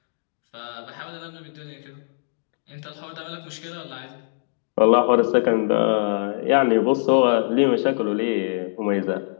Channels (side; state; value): right; silent; digital silence